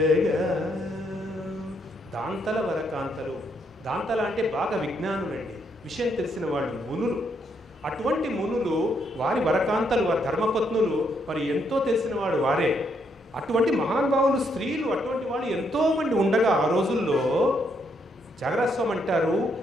దాంతల వరకాంతలు, దాంతల అంటే బాగా విజ్ఞానులండి, విషయం తెలిసిన వాళ్ళు, మునులు. అటువంటి మునులు వారి వరకాంతలు, వారి ధర్మపత్నులు మరి ఎంతో తెలిసిన వాడు వారే. అటువంటి మహానుభావులు స్త్రీలు అటువంటి వాళ్ళు ఎంతోమంది ఉండగా ఆ రోజుల్లో జాగరస్వామి అంటారు,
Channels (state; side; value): normal; both; correlation 0.75